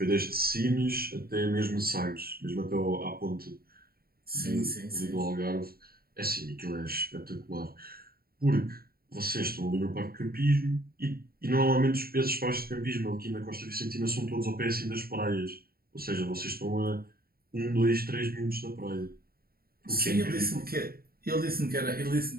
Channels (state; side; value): late; left; 0.44 ms